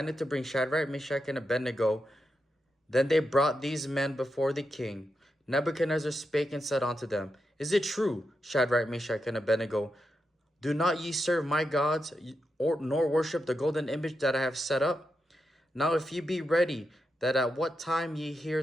to bring Shadrach, Meshach, and Abednego. Then they brought these men before the king. Nebuchadnezzar spake and said unto them, Is it true, Shadrach, Meshach, and Abednego? Do not ye serve my gods, nor worship the golden image that I have set up? Now if ye be ready, that at what time ye hear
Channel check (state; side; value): normal; both; correlation 0.86